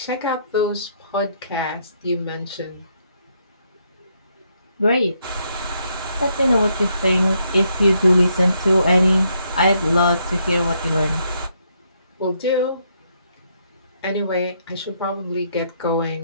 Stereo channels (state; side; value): inverted; both; correlation -0.74